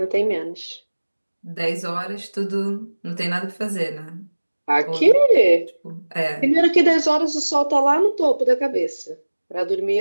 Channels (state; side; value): inverted; both; correlation -1.00